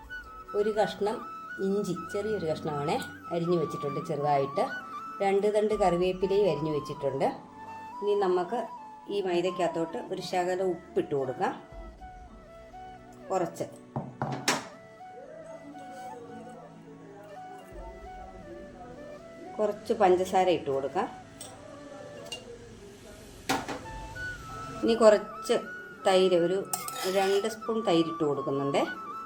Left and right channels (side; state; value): both; identical; correlation 1.00